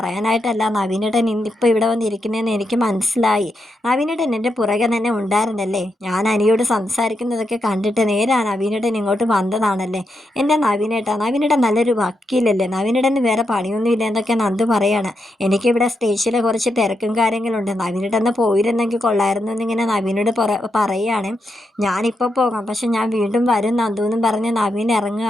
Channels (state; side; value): normal; both; correlation 0.84